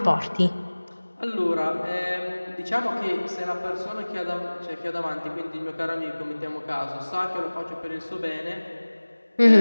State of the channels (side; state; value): both; inverted; correlation -1.00